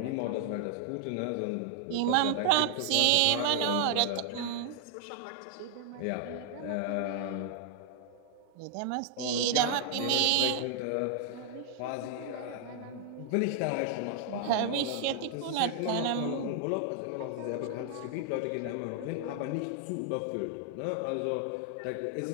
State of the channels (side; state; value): both; different; correlation 0.00